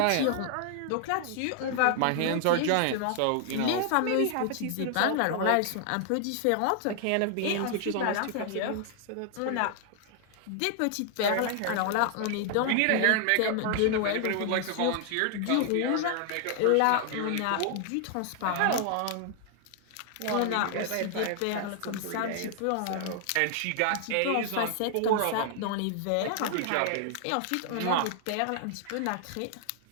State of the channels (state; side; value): different; both; correlation 0.00